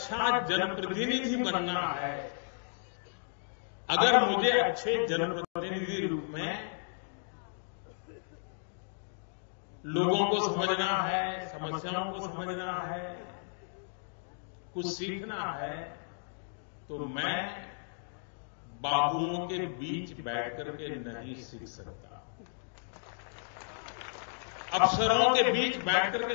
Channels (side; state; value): right; silent; digital silence